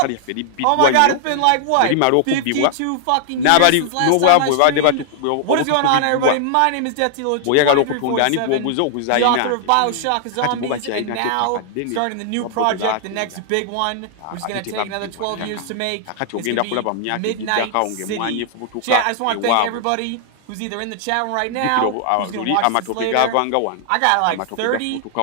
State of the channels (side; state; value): both; different; correlation 0.00